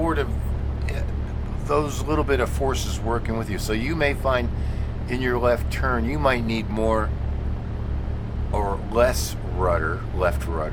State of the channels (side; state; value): both; identical; correlation 1.00